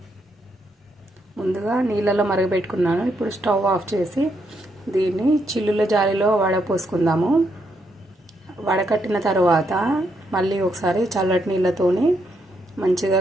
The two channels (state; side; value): normal; both; correlation 0.77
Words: ముందుగా నీళ్ళలో మరగబెట్టుకున్నాను. ఇప్పుడు స్టవ్ ఆఫ్ చేసి దీన్ని చిల్లుల జాలిలో వడపోసుకుందాము. వడకట్టిన తర్వాత మళ్ళీ ఒకసారి చల్లటి నీళ్ళతోని మంచిగా